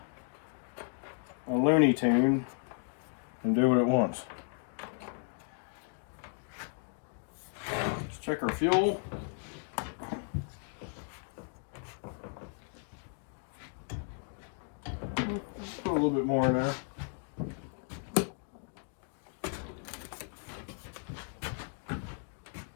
Looney Tune and do what it wants. Let's check our fuel. Put a little bit more in there.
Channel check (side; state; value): right; silent; 55 dB below the other